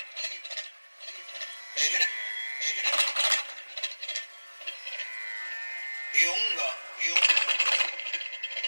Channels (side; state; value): both; inverted; correlation -1.00